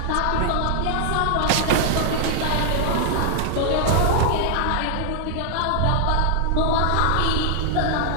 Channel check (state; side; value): different; both; correlation 0.00